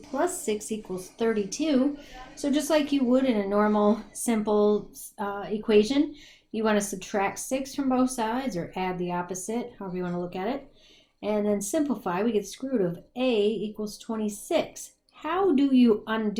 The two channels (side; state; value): both; identical; correlation 1.00